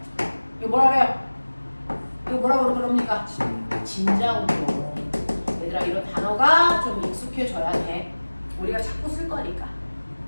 이거 뭐라 그래요? 이거 뭐라고 그럽니까? 진자 운동. 얘들아 이런 단어가 좀 익숙해져야 돼. 우리가 자꾸 쓸 거니까.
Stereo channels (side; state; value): both; inverted; correlation -1.00